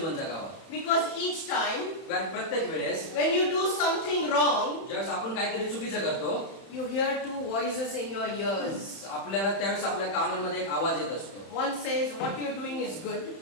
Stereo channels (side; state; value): right; late; 31 ms